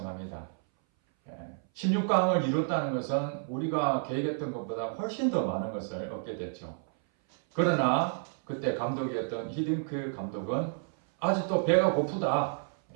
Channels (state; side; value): silent; left; 58 dB below the other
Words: 16강을 이뤘다는 것은 우리가 계획했던 것보다 훨씬 더 많은 것을 얻게 됐죠. 그러나 그때 감독이었던 히딩크 감독은 아직도 배가 고프다,